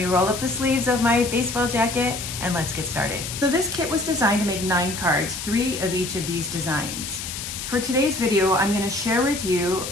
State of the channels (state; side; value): noise; left; hiss, 7 dB below the sound